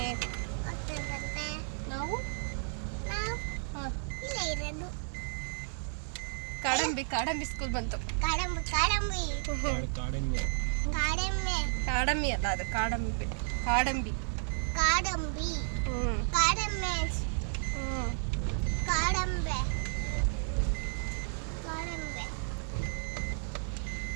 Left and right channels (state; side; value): silent; left; digital silence